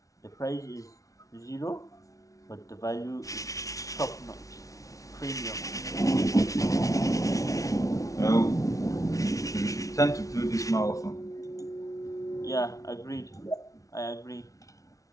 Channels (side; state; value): right; late; 0.17 ms